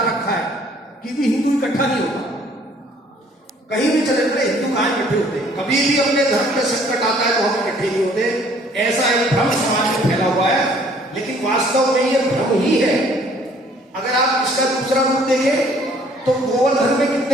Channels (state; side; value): normal; both; correlation 0.58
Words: रखा है कि भी हिंदू इकट्ठा नहीं होता, कहीं भी चले गए हिंदू कहाँ इकट्ठे होते हैं, कभी भी अपने धर्म में संकट आता है तो हम इकट्ठे नहीं होते, ऐसा एक भ्रम समाज में फैला हुआ है। लेकिन वास्तव में ये भ्रम ही है। अगर आप इसका दूसरा रूप देखें तो गोवर्धन में